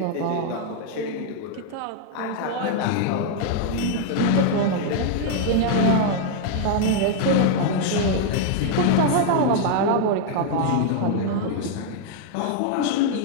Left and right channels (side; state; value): both; different; correlation 0.00